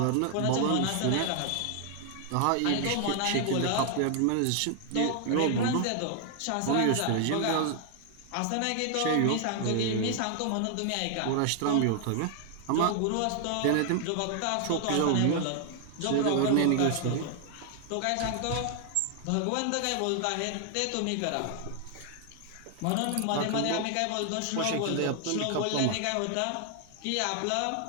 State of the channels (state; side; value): different; both; correlation 0.00